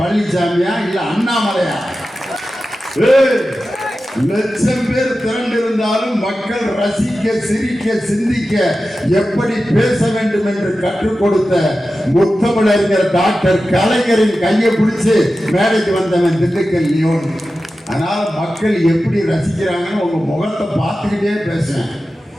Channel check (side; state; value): both; normal; correlation 0.93